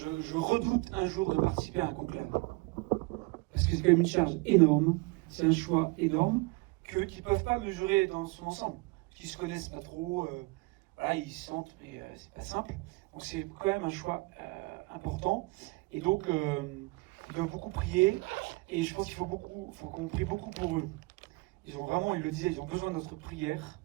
redoute un jour de participer à un conclave. Parce que c'est quand même une charge énorme, c'est un choix énorme qu'ils ne peuvent pas mesurer dans son ensemble. Qu'ils ne se connaissent pas trop, voilà, ils se sentent, mais c'est pas simple. Donc c'est quand même un choix important. Et donc, ils doivent beaucoup prier. Et je pense qu'il faut qu'on prie beaucoup pour eux. Ils le disaient, ils ont besoin de notre prière.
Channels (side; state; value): left; quieter; 25.8 dB